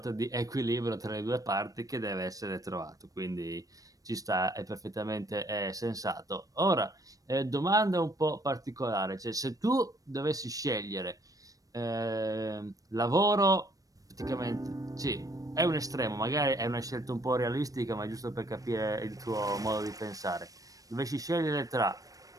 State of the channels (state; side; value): late; left; 0.17 ms